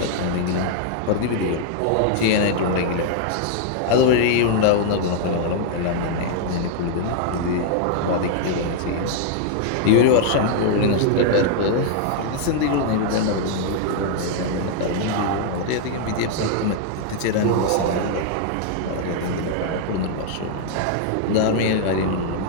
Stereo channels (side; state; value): both; different; correlation 0.00